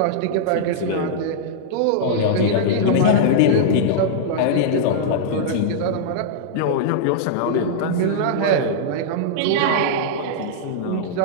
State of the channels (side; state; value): both; different; correlation -0.02